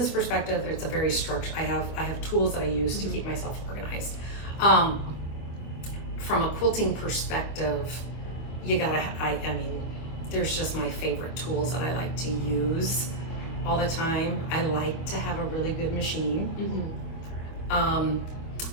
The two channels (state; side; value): late; right; 25 ms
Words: perspective, it's a very structured. I have tools that I use to keep myself organized. From a quilting perspective, I mean, there's just my favorite tools that I like to use all the time. I like to have a really good machine. I'm